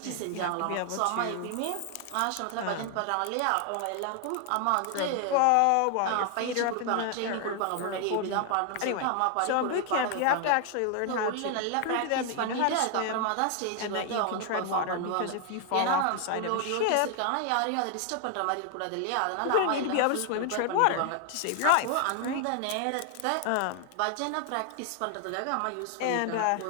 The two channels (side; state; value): both; different; correlation 0.00